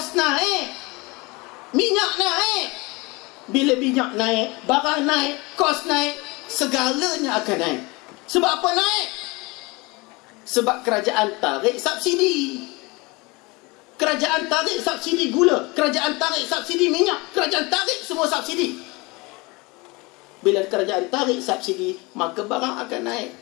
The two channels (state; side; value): quieter; right; 25.2 dB